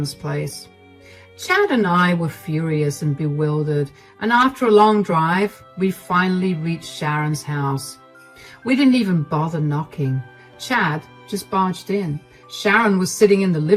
place. Chad and I were furious and bewildered, and after a long drive, we finally reached Sharon's house. We didn't even bother knocking. Chad just barged in. Sharon was sitting in the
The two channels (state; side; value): identical; both; correlation 1.00